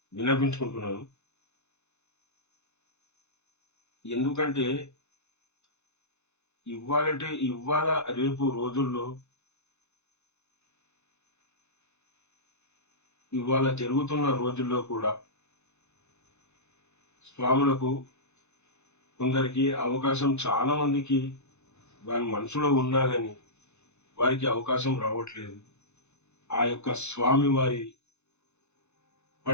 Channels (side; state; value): right; late; 0.82 ms